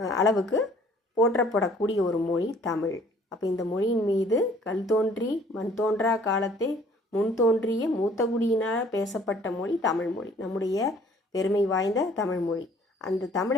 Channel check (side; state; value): both; normal; correlation 0.56